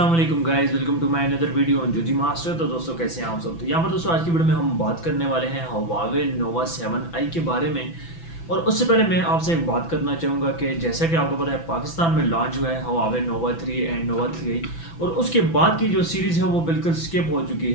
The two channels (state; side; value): late; right; 6.0 ms